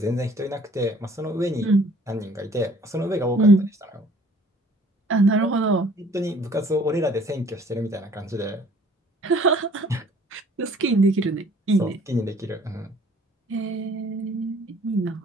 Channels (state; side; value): normal; both; correlation 0.55